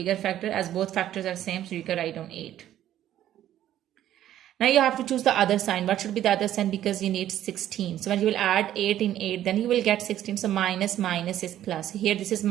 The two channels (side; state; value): left; quieter; 12.1 dB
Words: factor, as both factors are same, so you can write down 8. Now you have to choose the other sign. What should be the other sign? Because you need 16. So when you will add 8 in 8, then you will get 16. So minus minus is plus. Here this is